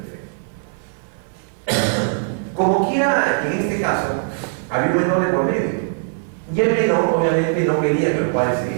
Perfecto. Como quiera, en este caso, había un menor de por medio. Y el menor, obviamente, no quería que los padres se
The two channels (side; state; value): left; silent; 64 dB below the other